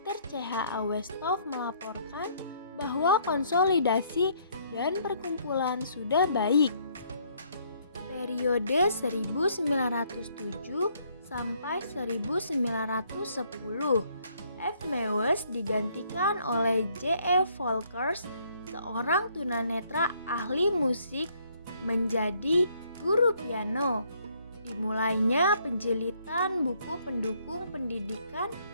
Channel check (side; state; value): both; inverted; correlation -0.66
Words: CH A. Westhoff melaporkan bahwa konsolidasi dan perkumpulan sudah baik. Periode 1907 sampai 1910, F. Mewes digantikan oleh J. E. Volkers, seorang tunanetra ahli musik, menjadi guru piano. Dimulainya penjilitan buku pendukung pendidikan